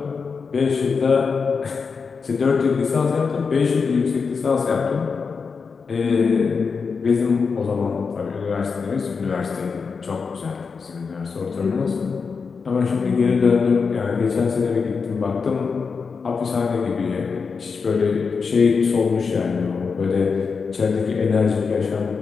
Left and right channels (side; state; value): right; quieter; 5.3 dB